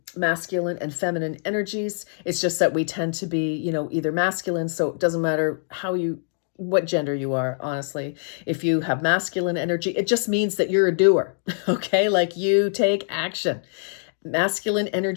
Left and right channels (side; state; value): right; silent; digital silence